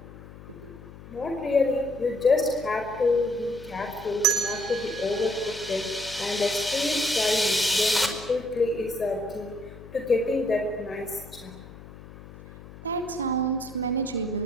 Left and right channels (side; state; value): left; noise; hum, 17 dB below the sound